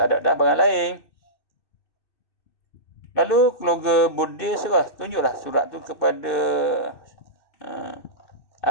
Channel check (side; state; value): right; late; 2.6 ms